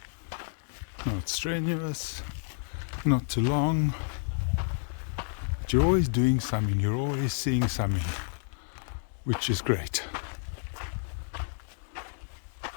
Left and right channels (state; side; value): silent; right; 58 dB below the other